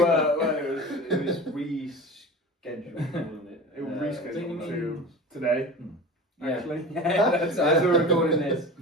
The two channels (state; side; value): normal; both; correlation 0.34